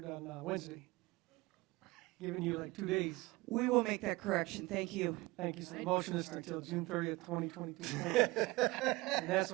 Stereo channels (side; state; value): left; quieter; 21.7 dB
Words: on Wednesday. Giving you like 2 days. We will make that correction. Thank you. Thank you. So the motion is until June 30th, 2022. Thank you. And that's